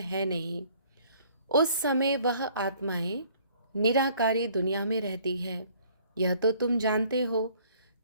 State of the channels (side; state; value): both; inverted; correlation -0.58